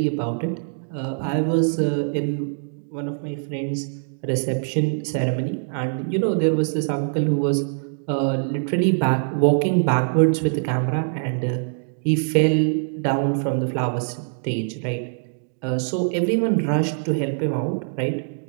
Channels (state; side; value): silent; left; digital silence